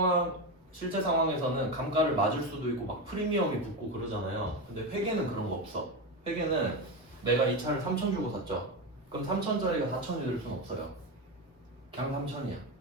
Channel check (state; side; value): normal; both; correlation 0.16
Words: 상황에서는 감가를 맞을 수도 있고 막 프리미엄이 붙고 그러잖아요. 근데 회계는 그런 거 없어. 회계는 내가 이 차를 3천 주고 샀죠. 그럼 3천짜리가 4천이 될 수는 없어요. 그냥 3천이야.